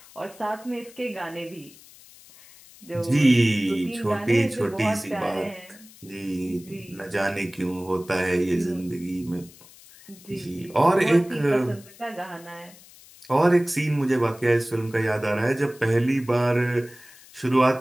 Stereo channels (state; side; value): noise; left; hiss, 22 dB below the sound